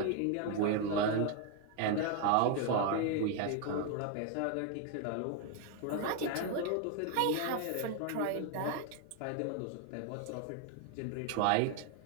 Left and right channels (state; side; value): different; both; correlation 0.01